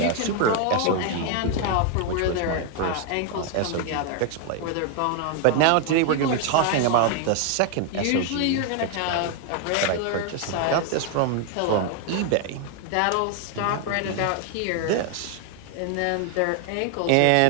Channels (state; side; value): different; both; correlation 0.01